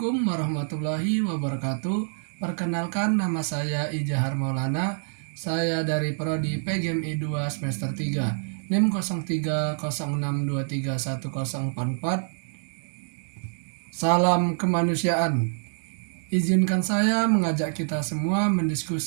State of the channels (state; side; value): silent; left; digital silence